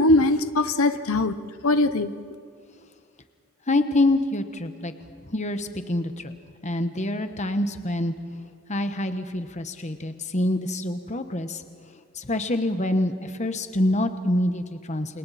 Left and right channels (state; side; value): normal; both; correlation 0.53